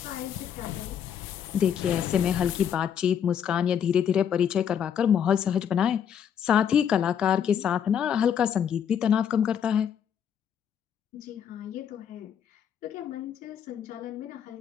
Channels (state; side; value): quieter; right; 8.5 dB